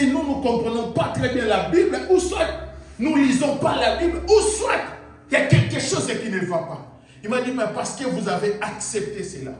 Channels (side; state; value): both; identical; correlation 1.00